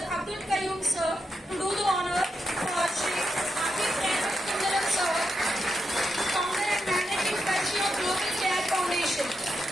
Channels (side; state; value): both; normal; correlation 0.85